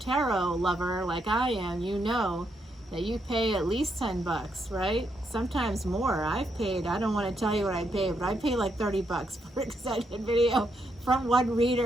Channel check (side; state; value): both; normal; correlation 0.79